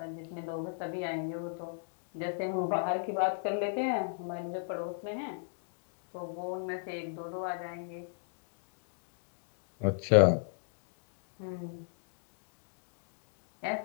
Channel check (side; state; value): right; silent; digital silence